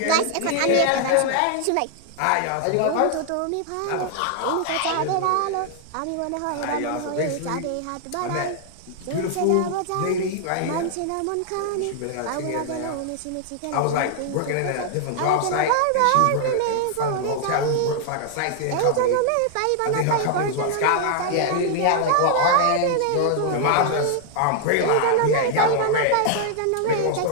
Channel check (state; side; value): different; both; correlation 0.00